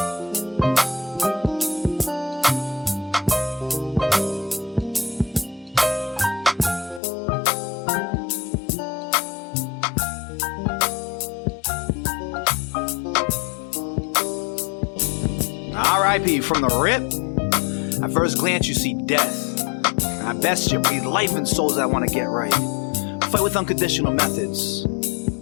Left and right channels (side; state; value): right; drops out; at 7.0 s